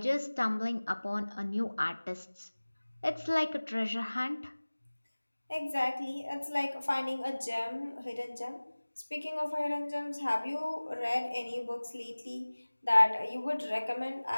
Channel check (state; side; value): inverted; both; correlation -1.00